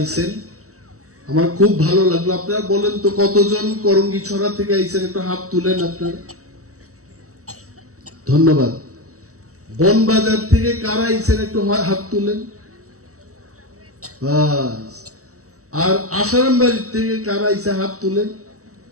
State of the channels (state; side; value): late; left; 0.65 ms